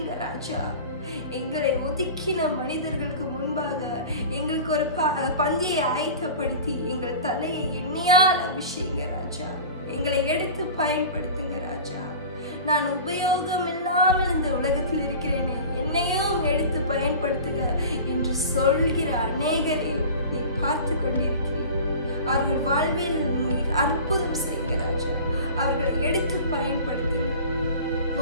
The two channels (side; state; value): both; inverted; correlation -0.37